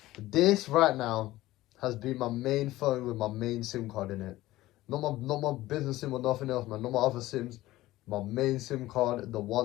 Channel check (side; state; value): right; quieter; 16.8 dB